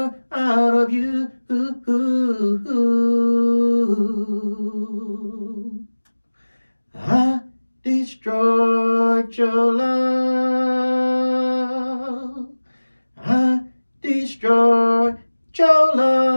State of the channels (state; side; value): inverted; both; correlation -1.00